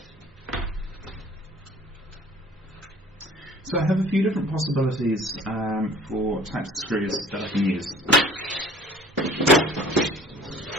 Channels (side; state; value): both; normal; correlation 0.49